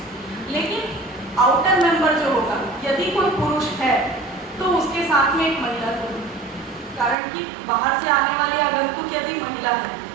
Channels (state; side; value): drops out; left; at 7.2 s